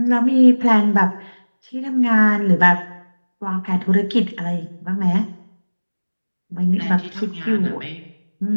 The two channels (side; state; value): both; inverted; correlation -1.00